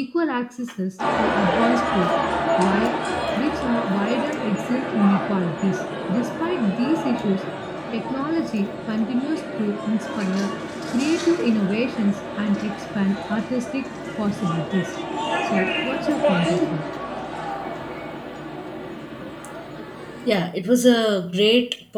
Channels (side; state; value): both; identical; correlation 1.00